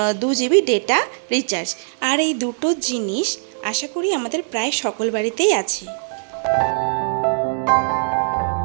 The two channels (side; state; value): left; silent; 65 dB below the other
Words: 2 জিবি ডেটা রিচার্জ। আর এই দুটো জিনিস আশা করি আমাদের প্রায় সকল বাড়িতেই আছে।